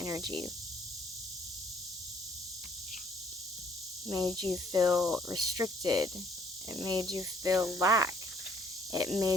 Made you feel restricted. It made you feel lack. It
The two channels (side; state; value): both; normal; correlation 0.61